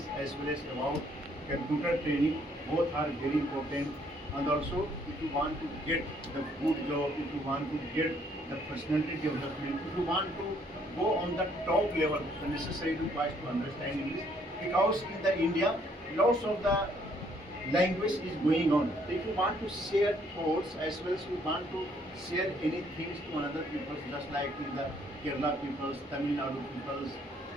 as well as about computer training. Both are very important. And also, if you want to get the good job, if you want to get the personality development, if you want to go on the top level, the necessary requires to understand English. Because in the India, lots of the language is going on. If you want to share thoughts as well as you want to share anything to another people, just like in the Kerala peoples, Tamil Nadu peoples,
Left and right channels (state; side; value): normal; both; correlation 0.66